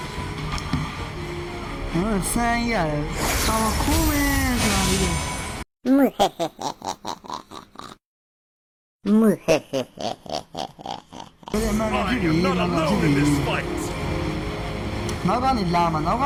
ဆန်းရတယ်ဆောင်းခိုးမယ်ဆိုတာဒီလိုဘယ်မှာ I ဖြစ်ပြီ am not ဘာဖြစ် alone ပြီ in this fight. နောက်ကနေလာမှာနောက်က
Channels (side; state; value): both; identical; correlation 1.00